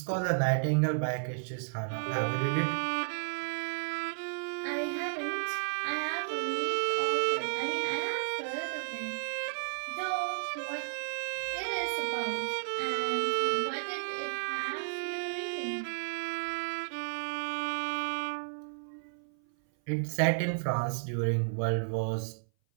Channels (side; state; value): left; silent; 56 dB below the other